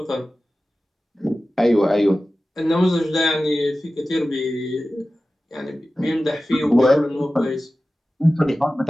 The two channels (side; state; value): both; normal; correlation 0.95